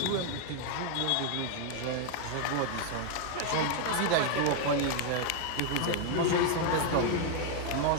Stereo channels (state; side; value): different; both; correlation 0.00